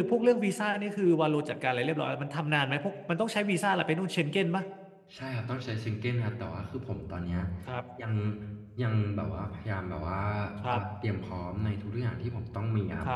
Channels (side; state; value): both; identical; correlation 1.00